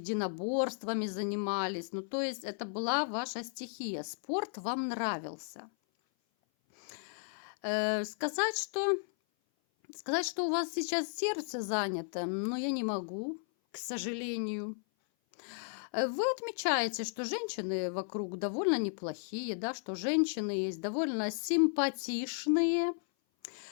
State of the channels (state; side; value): silent; right; 55 dB below the other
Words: занимались. Ну, то есть это была ваша стихия. Спорт вам нравился. Сказать, что у вас сейчас сердце занято, но я не могу, к сожалению. Вы отмечаете, что женщины вокруг довольно неплохие, да, что женщины есть довольно симпатичные,